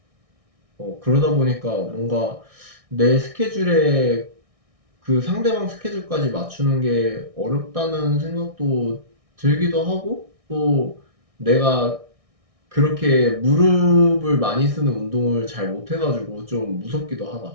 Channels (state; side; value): late; left; 1.6 ms